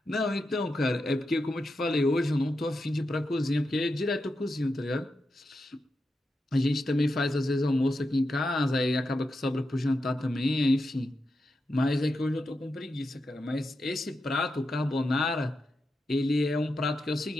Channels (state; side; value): normal; both; correlation 0.87